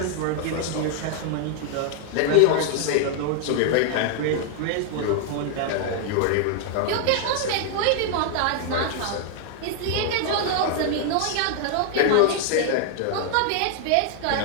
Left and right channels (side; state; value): both; different; correlation 0.00